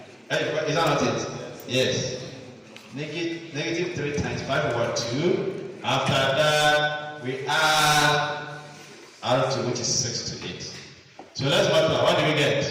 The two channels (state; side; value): identical; both; correlation 1.00